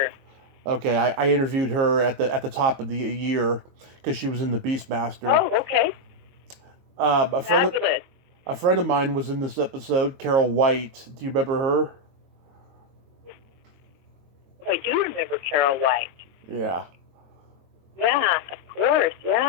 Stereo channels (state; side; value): late; left; 22 ms